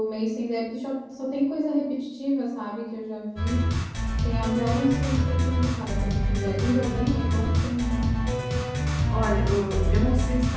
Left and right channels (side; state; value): both; identical; correlation 1.00